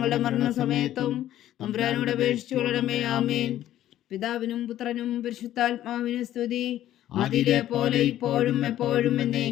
മരണസമയത്തും തമ്പുരാനോട് അപേക്ഷിച്ചു കൊള്ളണമേ. ആമേൻ. പിതാവിനും പുത്രനും പരിശുദ്ധാത്മാവിനും സ്തുതി, അതിലെ പോലെ ഇപ്പോഴും എപ്പോഴും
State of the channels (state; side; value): quieter; right; 12.8 dB